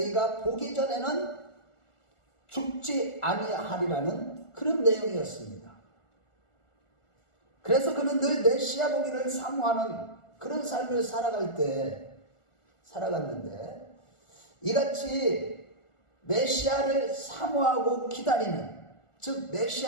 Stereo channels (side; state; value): right; late; 1.4 ms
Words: 보기 전에는 죽지 아니하리라는 그런 내용이었습니다. 그래서 그는 늘 메시아 보기를 사모하는 그런 삶을 살아갔는데 이같이 메시아를 사모하고 기다리는, 즉